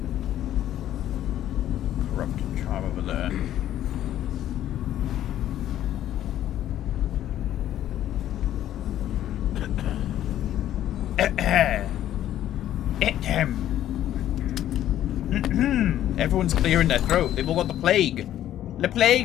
Everyone's clearing their throat. They've all got the plague. The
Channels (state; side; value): quieter; right; 12.1 dB